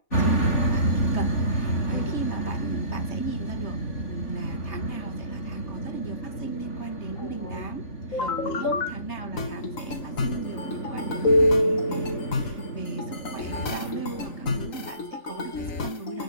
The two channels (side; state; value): right; late; 3.9 ms